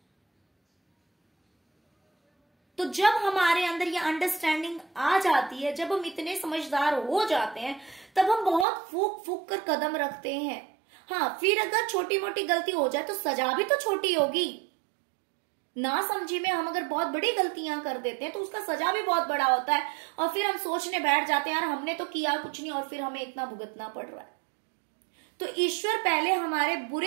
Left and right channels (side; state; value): left; drops out; at 8.7 s